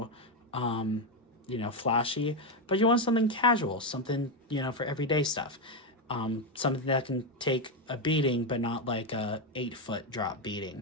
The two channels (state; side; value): normal; both; correlation 0.08